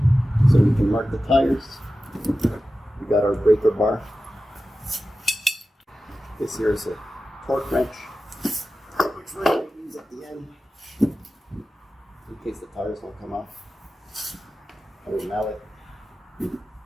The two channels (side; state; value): both; normal; correlation 0.94